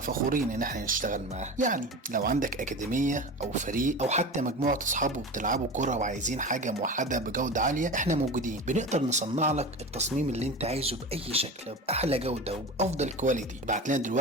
ان احنا نشتغل معاها. يعني لو عندك اكاديميه او فريق او حتى مجموعه اصحابه بتلعبوا كرة وعايزين حاجة موحدة بجودة عالية، احنا موجودين. بنقدر نصنع لك التصميم اللي انت عايزه بأي شكل بأحلى جودة وبأفضل كواليتي. ابعت لنا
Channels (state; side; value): normal; both; correlation 0.30